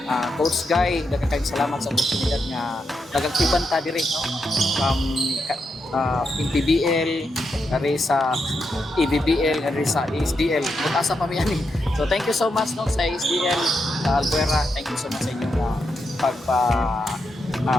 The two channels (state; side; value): normal; both; correlation 0.83